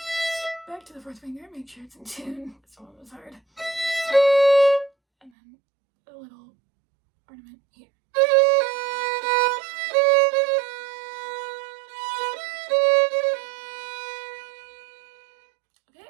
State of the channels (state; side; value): drops out; left; at 5.3 s